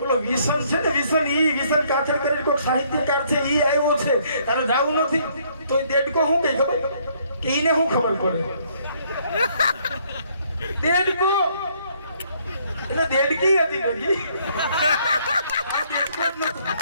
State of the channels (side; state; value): both; inverted; correlation -0.66